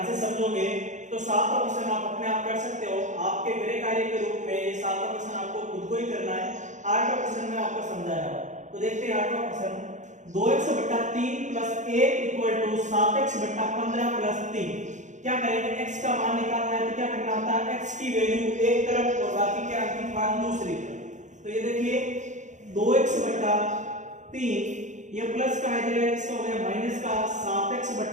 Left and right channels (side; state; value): left; late; 0.35 ms